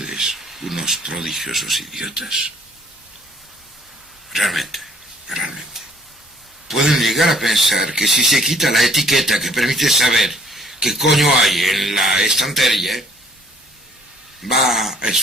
unos prodigiosos idiotas. Realmente. Pueden llegar a pensar que si se quita la etiqueta que permite saber qué coño hay en la estantería, va a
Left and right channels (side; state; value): both; normal; correlation 0.59